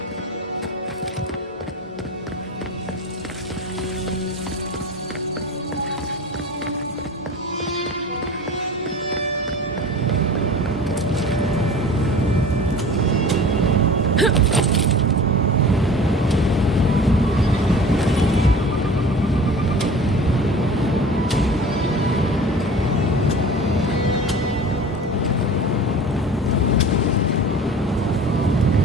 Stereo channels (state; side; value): normal; both; correlation 0.39